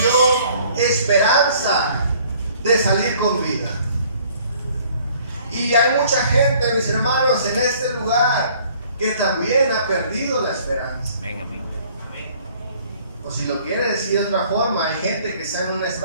esperanza de salir con vida. Y hay mucha gente, mis hermanos, en este lugar que también ha perdido la esperanza. Amén. O si lo quiere decir de otra forma, hay gente que está en un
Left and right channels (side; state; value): both; inverted; correlation -0.57